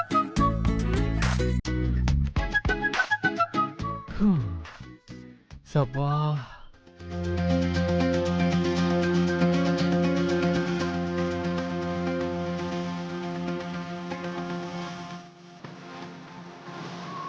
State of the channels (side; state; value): both; identical; correlation 1.00